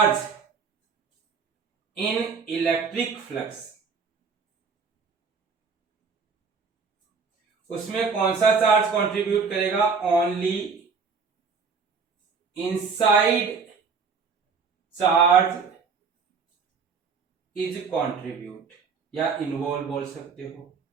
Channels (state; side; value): quieter; left; 5.3 dB